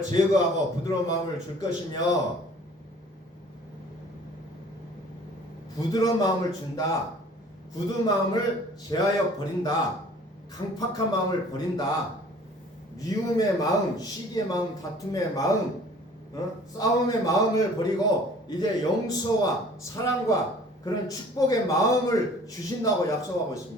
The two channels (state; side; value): normal; both; correlation 0.51